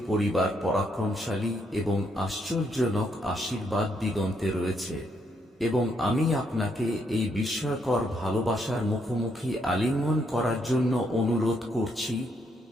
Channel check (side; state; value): both; normal; correlation 0.75